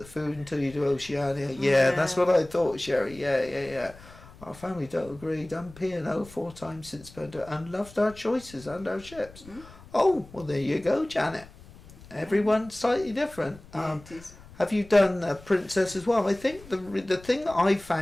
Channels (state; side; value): noise; left; rumble, 21 dB below the sound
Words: food until you do Oceania. Yeah, that's what I thought, Sherry. Yeah. Our family don't agree. Done P&O 4 times since Pendo and loved our choices and our ships. Oh, well, there you go, Janet. Everyone's slightly different. Have you done Princess as well? I think the thing that I